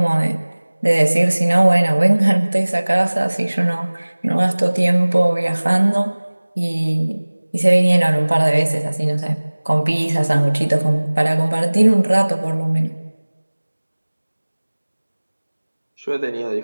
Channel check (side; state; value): both; inverted; correlation -1.00